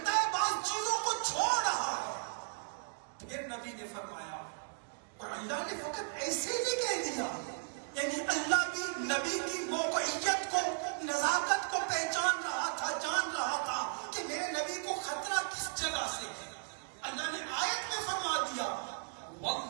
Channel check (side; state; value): left; silent; digital silence